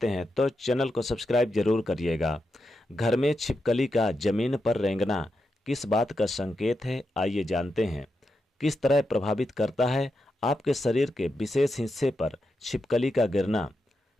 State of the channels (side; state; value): both; normal; correlation 0.86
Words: हैं तो चैनल को सब्सक्राइब जरूर करिएगा। घर में छिपकली का जमीन पर रेंगना किस बात का संकेत है, आइए जानते हैं। किस तरह प्रभावित करता है आपके शरीर के विशेष हिस्से पर छिपकली का गिरना।